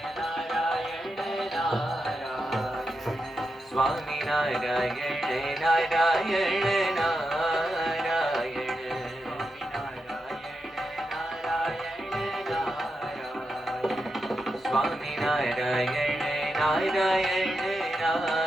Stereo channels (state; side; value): normal; both; correlation 0.87